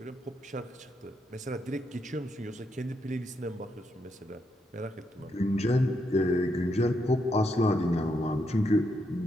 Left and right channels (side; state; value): both; normal; correlation 0.79